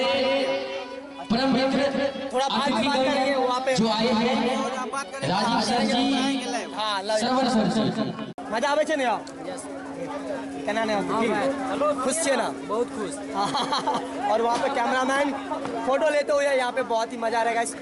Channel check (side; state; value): both; identical; correlation 1.00